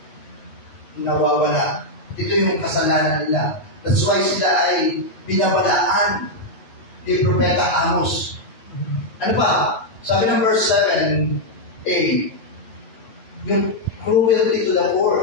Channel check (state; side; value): late; right; 9.3 ms